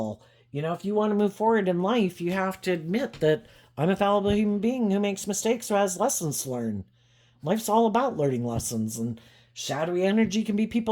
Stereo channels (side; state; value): both; identical; correlation 1.00